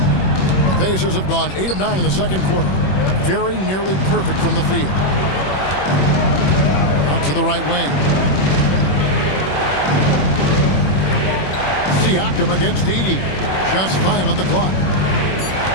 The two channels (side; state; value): right; late; 21 ms